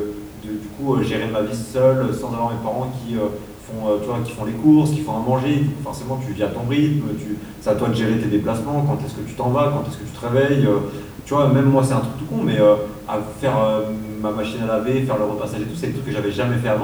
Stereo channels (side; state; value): both; identical; correlation 1.00